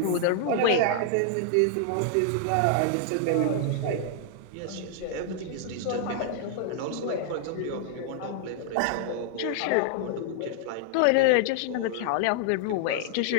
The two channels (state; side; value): different; both; correlation -0.01